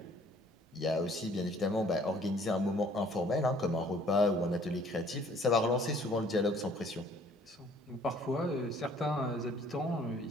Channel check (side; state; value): both; normal; correlation 0.57